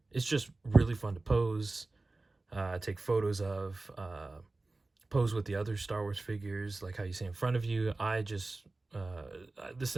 It's just really fun to pose. Take photos of, pose with the other Star Wars figures, like how you see in front of you. I just, this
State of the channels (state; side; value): quieter; left; 3.2 dB